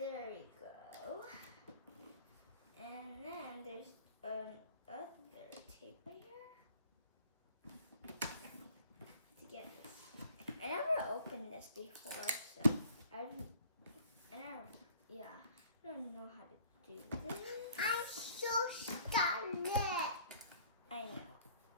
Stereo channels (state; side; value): inverted; both; correlation -0.54